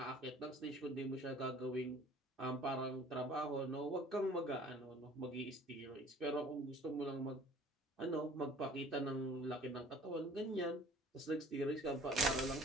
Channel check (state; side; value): normal; both; correlation 0.51